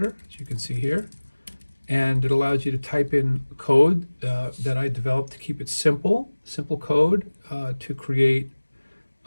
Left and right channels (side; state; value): both; inverted; correlation -1.00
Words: as you can see here, and it allows you to type in code that I developed to keep it simple code to create